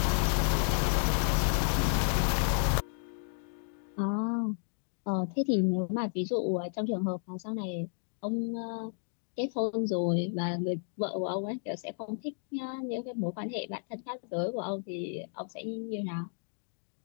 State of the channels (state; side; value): silent; right; digital silence